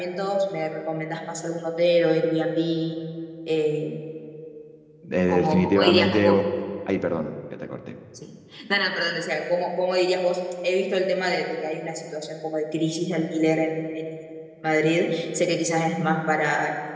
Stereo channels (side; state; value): both; identical; correlation 1.00